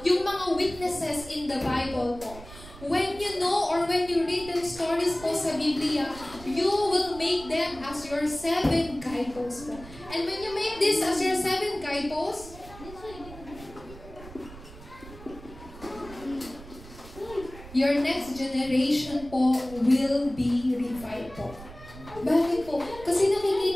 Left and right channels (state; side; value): noise; right; rumble, 17 dB below the sound